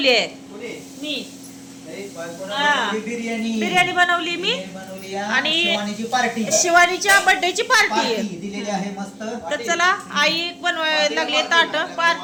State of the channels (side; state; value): both; identical; correlation 1.00